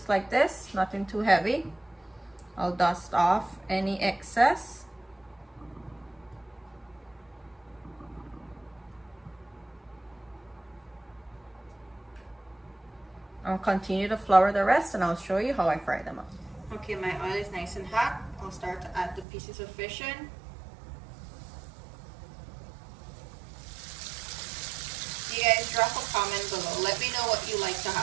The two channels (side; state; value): left; drops out; at 19.2 s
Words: like this, nothing too heavy. I'll dust off any excess. I'll continue to flour the rest and I'll show you how I fry them up. Okay, my oil is nice and hot. I'll start to add the pieces of fish in. You guys drop a comment below. Let me know what you like to